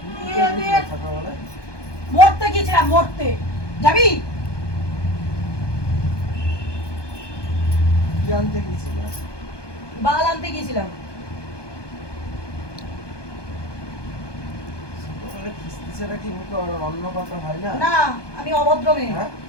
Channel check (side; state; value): right; late; 1.2 ms